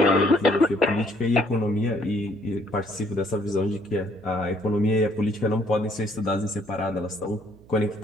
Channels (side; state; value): right; noise; hum, 24 dB below the sound